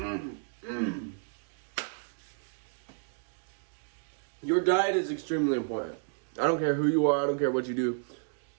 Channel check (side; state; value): left; silent; digital silence